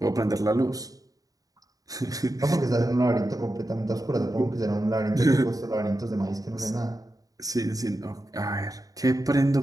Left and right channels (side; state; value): left; late; 0.17 ms